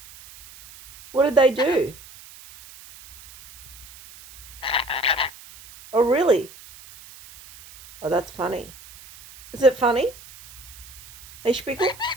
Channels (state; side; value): noise; right; hiss, 20 dB below the sound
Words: What did they do? Oh, really? Oh, that's funny. Is it funny? Hey, Spickle?